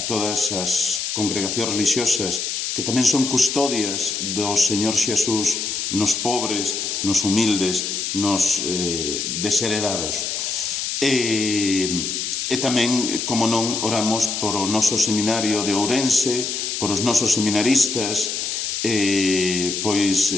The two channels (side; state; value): left; noise; hiss, 2 dB below the sound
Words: todas as congregacións religiosas que tamén son custodias do Señor Xesús nos pobres, nos humildes, nos desheredados. E tamén, como non, oramos por o noso seminario de Ourense, por os nosos seminaristas, pois